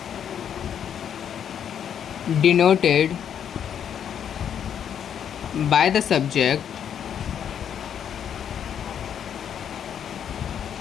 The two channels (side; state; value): right; quieter; 8.7 dB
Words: denoted by the subject